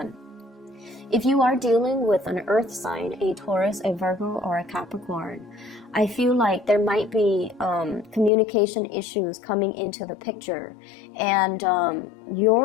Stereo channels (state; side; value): drops out; right; at 8.3 s